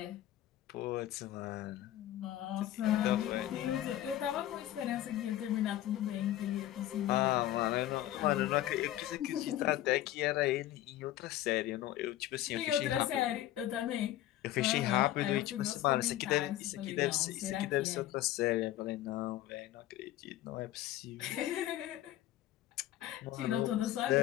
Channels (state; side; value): quieter; right; 13.6 dB